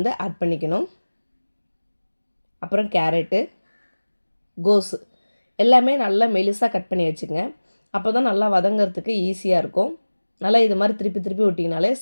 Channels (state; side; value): inverted; both; correlation -1.00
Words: ஆட் பண்ணிக்கணும். அப்புறம் கேரட்டு, கோஸு எல்லாமே நல்லா மெலிசாக கட் பண்ணி வச்சுங்க. அப்போ தான் நல்லா வதங்கிறதுக்கு ஈஸியாக இருக்கும். நல்லா இது மாதிரி திருப்பி விட்டிங்கனாலே